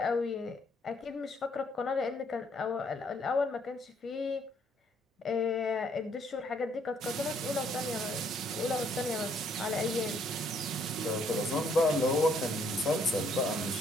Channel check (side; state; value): both; normal; correlation 0.67